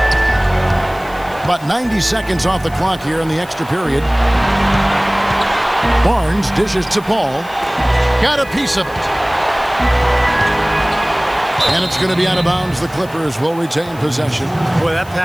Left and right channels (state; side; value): noise; left; hiss, 23 dB below the sound